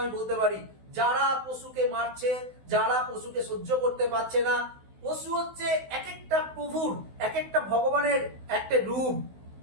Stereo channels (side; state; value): left; late; 16 ms